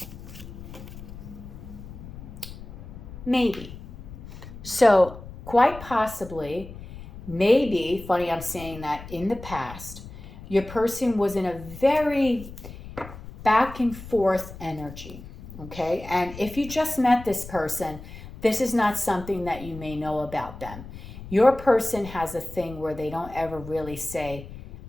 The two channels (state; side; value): noise; left; rumble, 14 dB below the sound